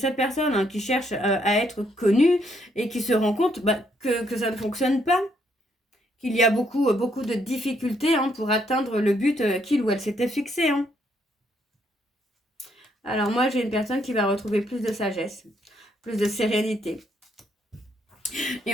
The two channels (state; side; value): normal; both; correlation 0.72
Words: personne qui cherche à être connue et qui se rend compte que ça ne fonctionne pas. Qu'il y a beaucoup de difficultés pour atteindre le but qu'il ou elle s'était fixé. Alors moi, j'ai une personne qui va retrouver plus de sagesse, plus de sérénité.